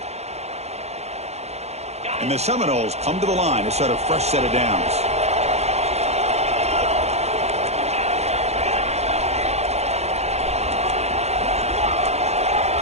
And the Seminoles come to the line to start a fresh set of downs.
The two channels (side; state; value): left; late; 0.31 ms